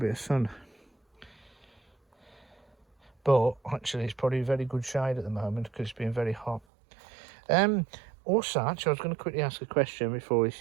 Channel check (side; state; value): left; drops out; at 6.6 s